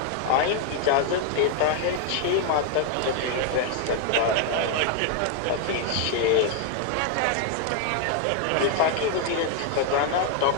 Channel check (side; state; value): both; different; correlation 0.00